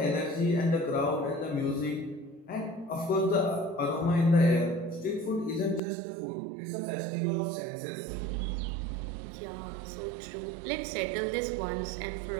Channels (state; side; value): drops out; left; at 5.8 s